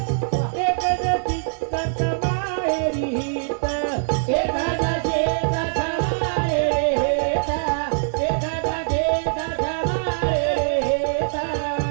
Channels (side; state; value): left; silent; 63 dB below the other